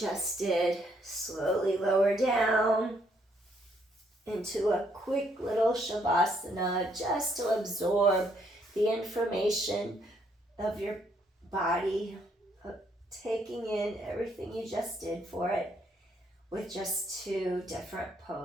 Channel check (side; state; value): both; normal; correlation 0.71